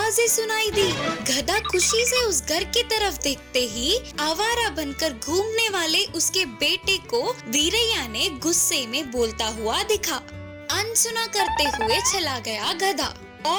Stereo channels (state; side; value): identical; both; correlation 1.00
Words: सुनाई दी। गधा खुशी से उस घर की तरफ देखते ही आवारा बनकर घूमने वाले उसके बेटे को वीरैया ने गुस्से में बोलता हुआ दिखा। अनसुना करते हुए चला गया गधा।